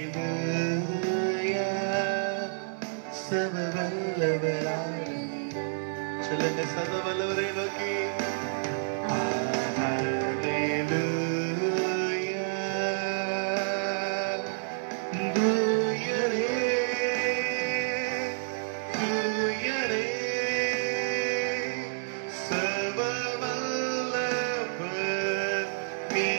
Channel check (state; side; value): silent; left; 58 dB below the other